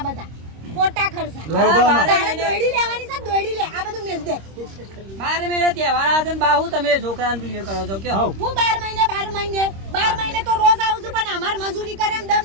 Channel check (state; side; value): late; left; 26 ms